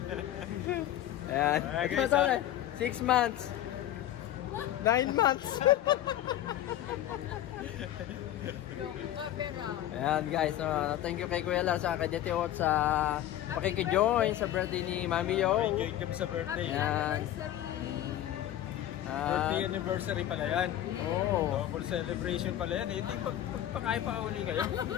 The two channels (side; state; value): right; quieter; 12.5 dB